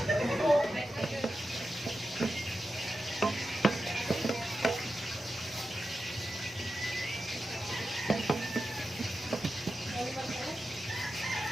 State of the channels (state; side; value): normal; both; correlation 0.90